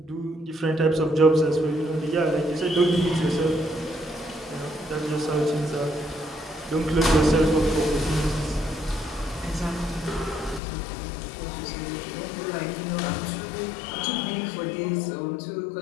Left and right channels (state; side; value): drops out; right; at 10.6 s